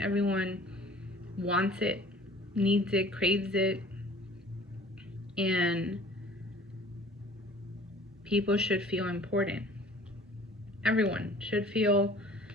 wants it, needs it, craves it. And people should feel important. Everyone should feel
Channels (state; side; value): normal; both; correlation 0.49